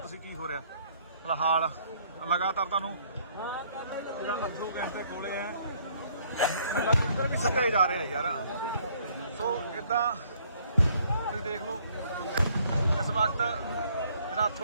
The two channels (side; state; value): both; inverted; correlation -0.63